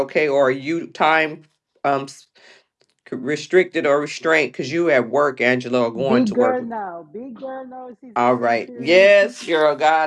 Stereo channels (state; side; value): identical; both; correlation 1.00